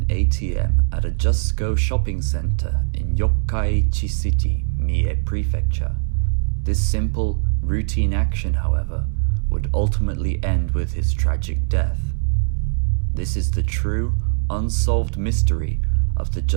ATM at a Just Go shopping center in Yokkaichi City, Mie Prefecture. This simple, routine action, however, would ultimately end with his tragic death. This is the true, unsolved mystery of the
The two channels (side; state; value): left; silent; digital silence